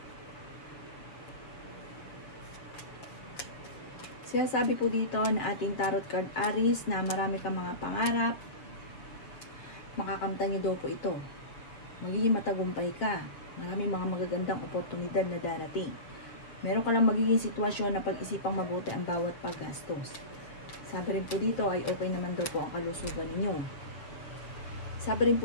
Sinasabi po dito na ating tarot card Aries na marami kang mga pangarap. Makakamtan niyo daw po ito. Magiging matagumpay ka. Maraming mga magagandang oportunidad na darating. Meron ka lang magiging sitwasyon na pag-isipang mabuti ang bawat paggastos. Sabi rin po dito ay okay naman daw po ang kalusugan ninyo. Sabi rin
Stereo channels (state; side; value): late; right; 6.8 ms